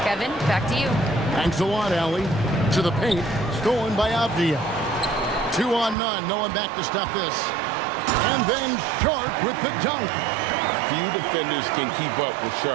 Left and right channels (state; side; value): drops out; left; at 6.0 s